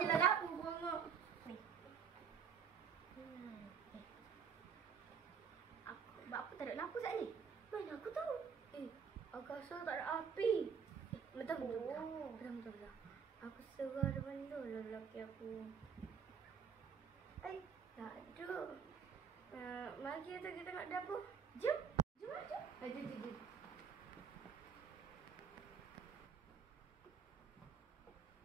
lah lampu bongok. Apa tak ada lampu saat ni? Mana aku tahu? Aku rasa tak ada api. Betul. Aku serah depan tu lelaki aku. Tak ada. Mari kita nak dapur. Jom. Jom.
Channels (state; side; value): quieter; left; 6.7 dB